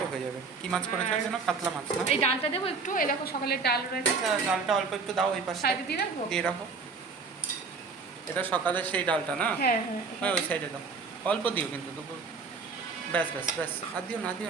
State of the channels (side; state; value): left; quieter; 4.8 dB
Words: হয়ে যাবে। কি মাছ করেছো যেন? কাতলা মাছ না? এই ডালটা দেবো একটু, এই দেখো সকালের ডাল রয়েছে। আচ্ছা, ডালটা অল্প একটু দাও, ওই পাশে সাইডে দিয়ে রাখবো? দিয়ে রাখো। এটা সকালের সেই ডালটা না? হ্যাঁ হ্যাঁ, হ্যাঁ, ওই সাইডে দাও। অল্প দিও কিন্তু দুপুর। ব্যাস ব্যাস ব্যাস, আর দিও না,